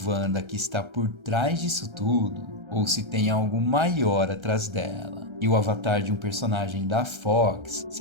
que está por trás disso tudo ou se tem algo maior atrás dela. E o avatar de um personagem da Fox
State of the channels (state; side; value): late; left; 1.3 ms